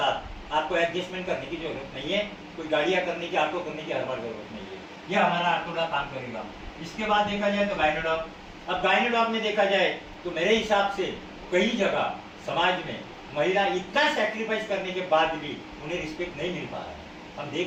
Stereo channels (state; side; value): identical; both; correlation 1.00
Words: आपको एडजस्टमेंट करने की जरूरत नहीं है, कोई गाड़ियां करने की, ऑटो करने की हर बार जरूरत नहीं है। यह हमारा आर्थोडॉक काम करेगा। इसके बाद देखा जाए तो गायनोडॉक। अब गायनोडॉक में देखा जाए तो मेरे हिसाब से कई जगह समाज में महिला इतना सैक्रिफाइस करने के बाद भी उन्हें रिस्पेक्ट नहीं मिल पा रहा है। हम